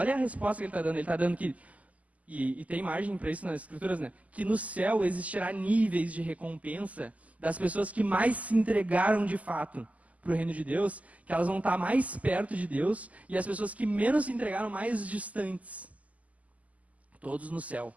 a resposta que ele está dando. Ele está dando que, e tem margem para isso nas escrituras, né? Que no céu existirá níveis de recompensa das pessoas que mais se entregaram de fato para o reino de Deus, que elas vão estar mais perto de Deus, e as pessoas que menos se entregaram mais distantes. Todos no céu.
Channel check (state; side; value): late; left; 0.073 ms